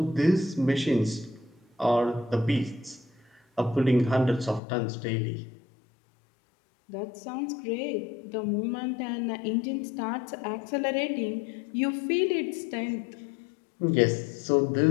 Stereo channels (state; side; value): drops out; right; at 4.6 s